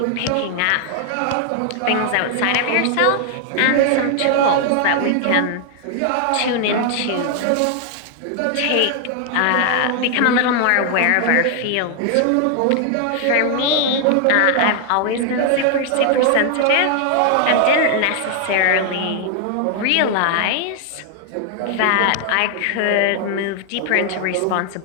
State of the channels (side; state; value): both; different; correlation 0.00